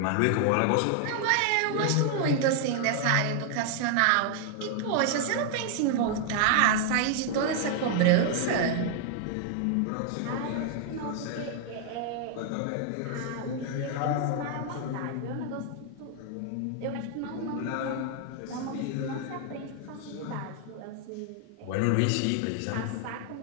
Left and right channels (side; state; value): both; different; correlation 0.00